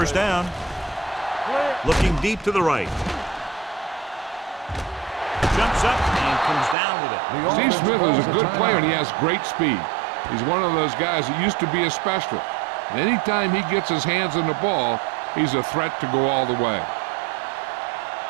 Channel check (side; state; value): left; drops out; at 6.8 s